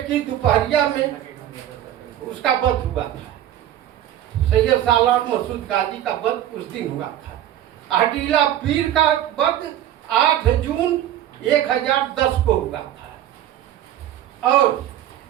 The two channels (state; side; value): quieter; left; 11.9 dB